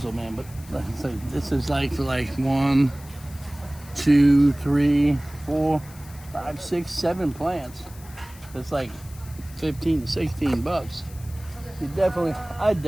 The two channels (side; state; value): left; noise; hiss, 21 dB below the sound